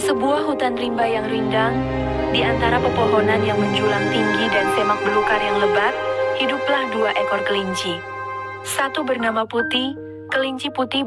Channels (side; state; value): both; identical; correlation 1.00